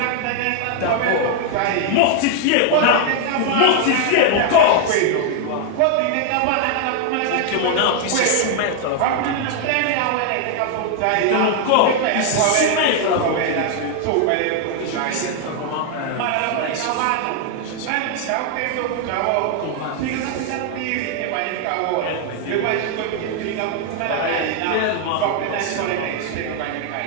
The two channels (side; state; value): both; different; correlation 0.00